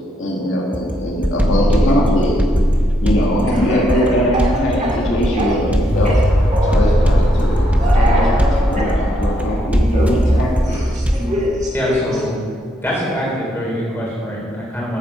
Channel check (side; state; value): both; normal; correlation 0.76